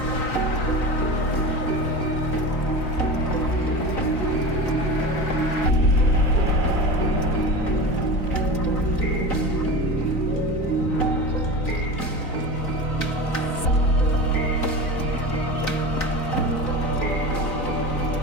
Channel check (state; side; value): late; right; 4.0 ms